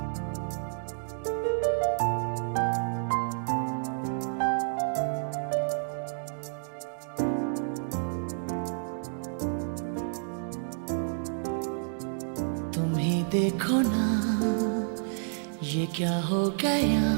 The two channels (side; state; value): left; silent; digital silence